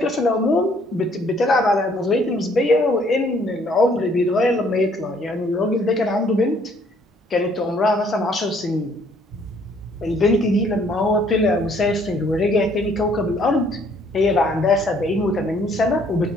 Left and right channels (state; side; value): normal; both; correlation 0.63